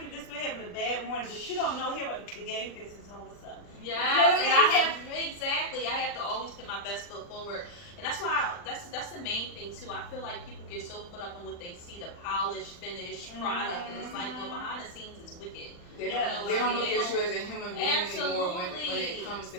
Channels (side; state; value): right; late; 40 ms